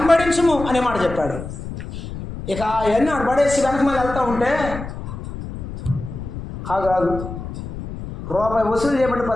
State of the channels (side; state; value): left; noise; rumble, 9 dB below the sound